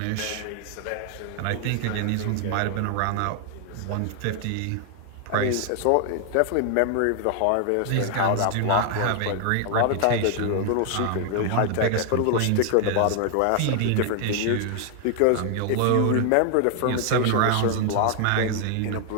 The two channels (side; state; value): both; different; correlation 0.00